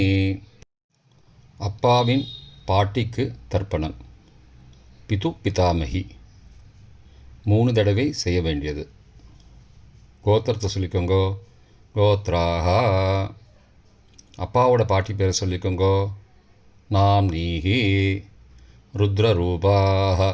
அப்பாவின் பாட்டிக்கு தர்ப்பணம். பிது பிதாமகி 3 தடவை செய்ய வேண்டியது. கோத்திரத்தை சொல்லிக்கோங்கோ கோத்ராக. அப்பாவோட பாட்டி பேரை சொல்லிக்கோங்கோ நாம் நீஹி. ருத்ரரூபாக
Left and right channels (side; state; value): both; identical; correlation 1.00